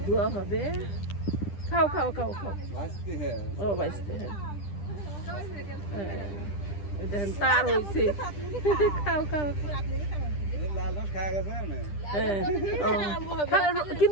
ধোয়া হবে। খাও খাও খাও খাও। ভাজতে হ্যাঁ ও বাইসতে হ্যাঁ হ্যাঁ এই দেখেন তার হয়েছে। খাও খাও লাল রস খাওয়া গেছে না হ্যাঁ ও।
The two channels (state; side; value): late; right; 10 ms